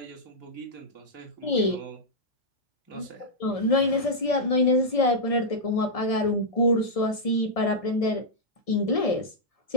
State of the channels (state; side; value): late; right; 1.7 ms